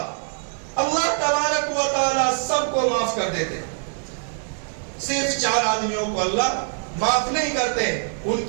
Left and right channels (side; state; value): left; silent; digital silence